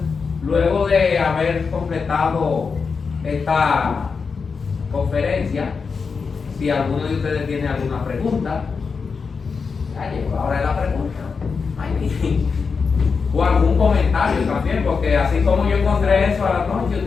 luego de haber completado esta conferencia, si alguno de ustedes tiene alguna pregunta, ya llegó la hora de la pregunta. O algún comentario también, porque así como yo encontré eso a la noche,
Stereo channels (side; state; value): right; quieter; 5.2 dB